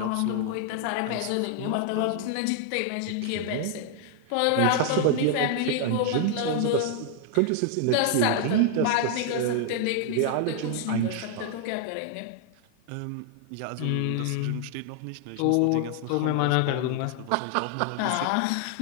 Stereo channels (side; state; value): both; different; correlation 0.00